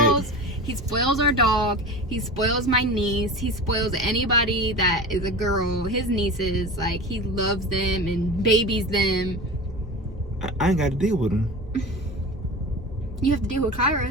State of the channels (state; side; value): normal; both; correlation 0.31